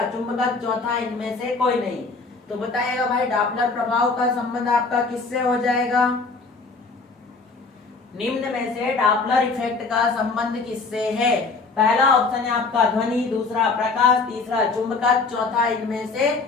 चुंबकत्व, चौथा इनमें से कोई नहीं। तो बताइएगा भाई डॉपलर प्रभाव का संबंध आपका किससे हो जाएगा। निम्न में से डॉपलर इफेक्ट का संबंध किससे है। पहला ऑप्शन है आपका ध्वनि, दूसरा प्रकाश, तीसरा चुंबकत्व, चौथा इनमें से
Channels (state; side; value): quieter; right; 4.1 dB